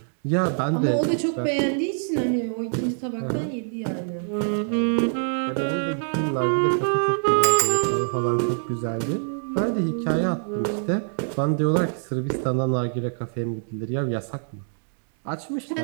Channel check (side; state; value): left; silent; digital silence